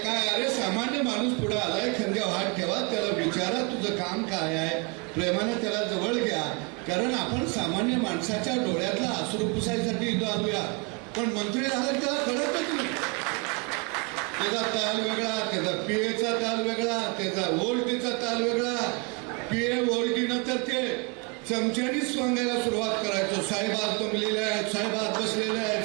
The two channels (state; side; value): quieter; left; 31.6 dB